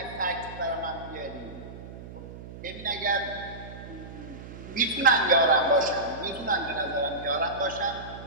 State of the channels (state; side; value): noise; right; hum, 13 dB below the sound